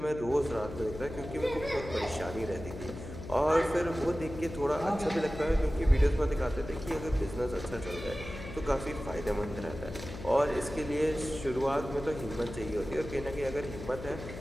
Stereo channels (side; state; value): left; noise; hum, 11 dB below the sound